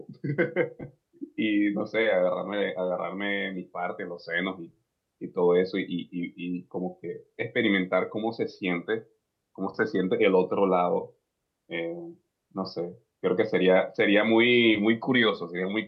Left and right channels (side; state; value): both; identical; correlation 1.00